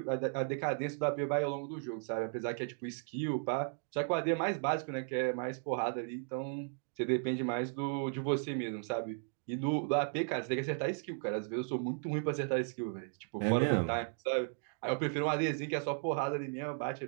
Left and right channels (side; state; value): left; silent; 54 dB below the other